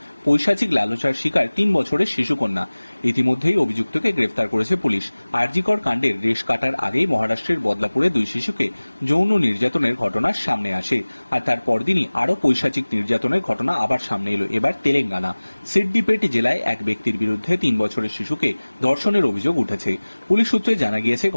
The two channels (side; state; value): both; inverted; correlation -1.00